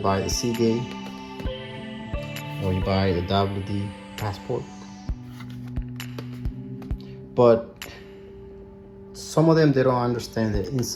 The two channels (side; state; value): both; identical; correlation 1.00